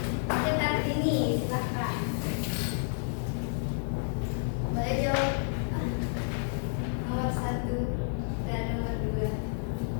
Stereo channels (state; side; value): silent; right; digital silence